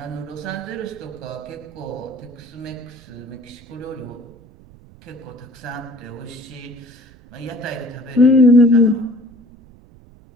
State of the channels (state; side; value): noise; right; rumble, 24 dB below the sound